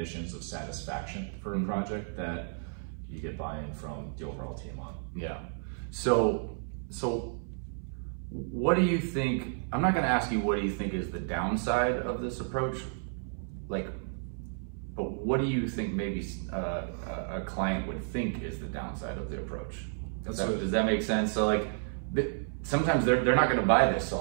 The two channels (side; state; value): left; silent; 56 dB below the other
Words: of satisfaction for a project that you get buy-in from the overall team on. Yeah. So what do you think, I'm not going to ask you what do you think is the downside of this approach, but what do you think maybe a client would think is the downside of the approach? Does that make sense? So sometimes they're not going to buy this